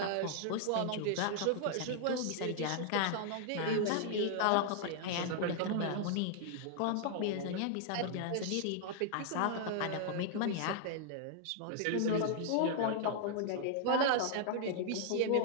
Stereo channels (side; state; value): both; different; correlation 0.00